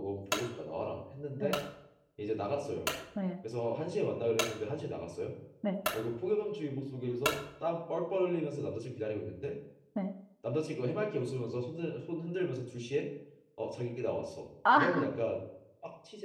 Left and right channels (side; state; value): both; identical; correlation 1.00